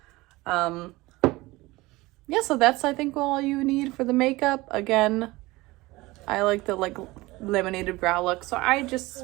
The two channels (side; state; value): left; quieter; 20.6 dB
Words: Yeah, so that's, I think, all you need for the makeup. Again, I like the like laminated brow look, so I